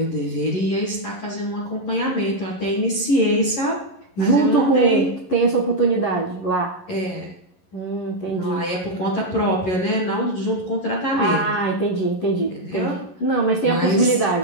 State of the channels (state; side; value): late; right; 11 ms